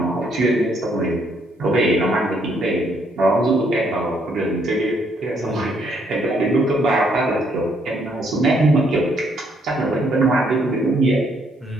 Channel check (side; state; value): both; normal; correlation 0.70